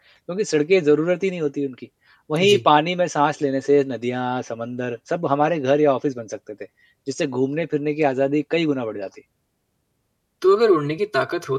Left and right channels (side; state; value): both; identical; correlation 1.00